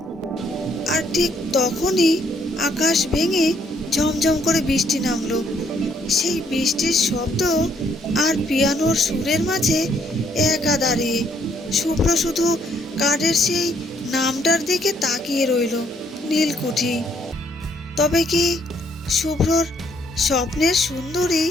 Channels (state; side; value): normal; both; correlation 0.68